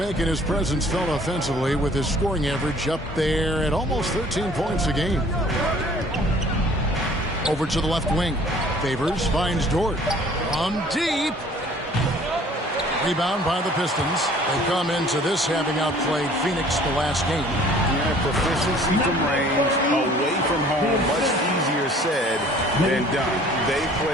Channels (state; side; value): normal; both; correlation 0.53